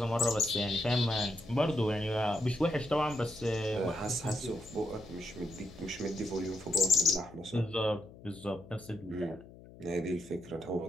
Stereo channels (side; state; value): left; noise; hum, 19 dB below the sound